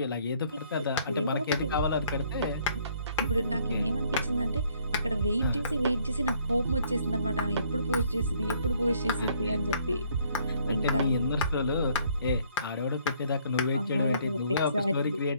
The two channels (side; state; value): both; inverted; correlation -0.64